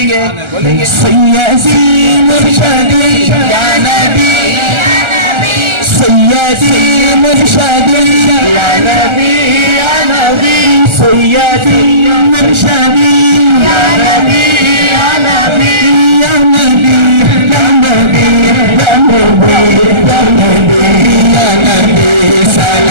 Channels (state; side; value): late; left; 1.3 ms